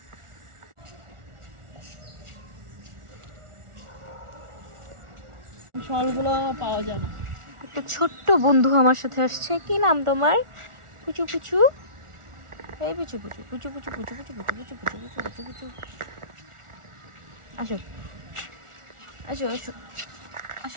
ফলগুলো পাওয়া যায় না। একটা ছোট্ট বন্ধু আমার সাথে আসছে। কি নাম তোমার? পুচু পুচু, এই পুচু পুচু পুচু পুচু পুচু পুচু পুচু পুচু পুচু পুচু পুচু পুচু, আসো আসো আসো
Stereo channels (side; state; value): left; late; 1.4 ms